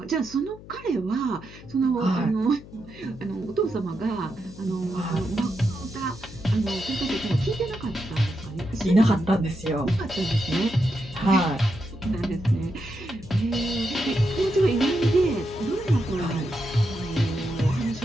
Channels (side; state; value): left; noise; hum, 18 dB below the sound